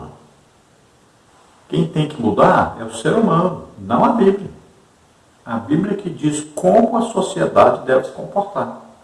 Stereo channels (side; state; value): both; identical; correlation 1.00